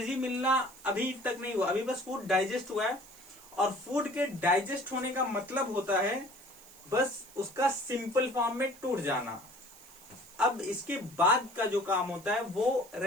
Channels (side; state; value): right; noise; hiss, 21 dB below the sound